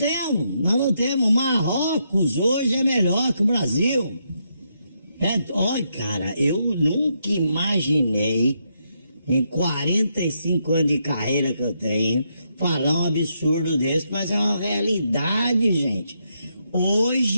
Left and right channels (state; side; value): inverted; both; correlation -0.79